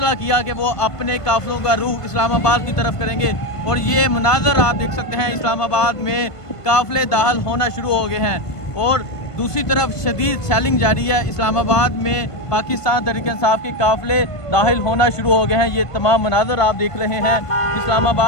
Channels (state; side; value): late; right; 1.5 ms